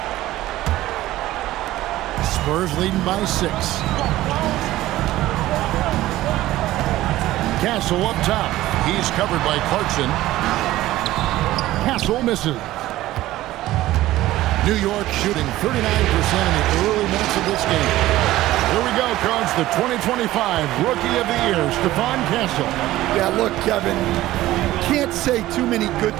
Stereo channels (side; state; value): left; quieter; 15.8 dB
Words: Spurs leading by 6. Castle up top. He's covered by Clarkson. Castle misses. New York shooting 39% in the early minutes of this game. Here we go, Coach. The 2025 Rookie of the Year, Stephon Castle. Yeah, look, Kevin, can't say too many good